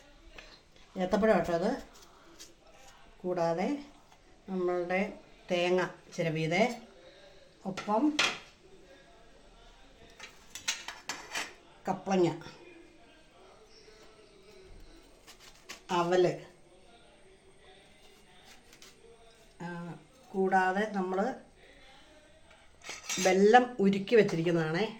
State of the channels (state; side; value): identical; both; correlation 1.00